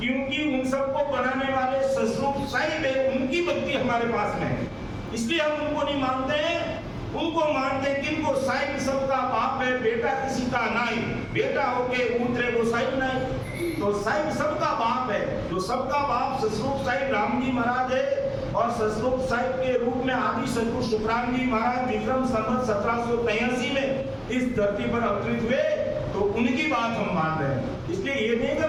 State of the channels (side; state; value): both; identical; correlation 1.00